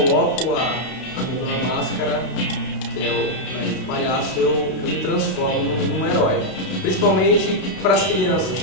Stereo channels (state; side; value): late; right; 32 ms